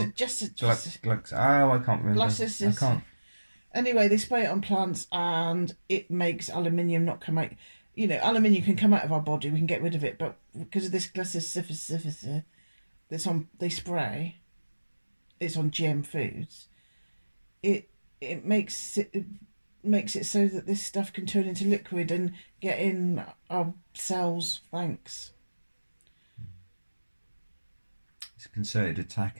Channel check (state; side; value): inverted; both; correlation -1.00